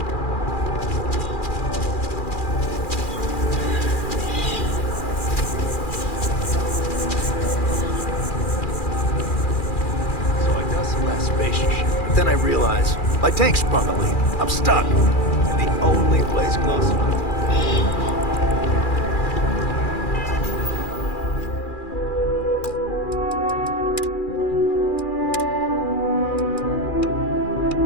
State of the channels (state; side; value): late; right; 2.4 ms